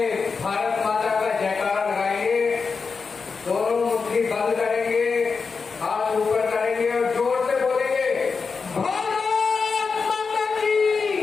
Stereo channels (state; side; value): quieter; right; 5.0 dB